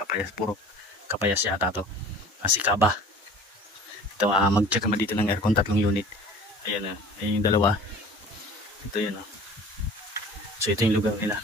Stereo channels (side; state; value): both; normal; correlation 0.44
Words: puro Capayas yata to. Sikaba. Ito, mag-check kami dito ng aircon, 3 unit. Ayan, ayun yung dalawa. Ito yun, So ito yung lugar nila.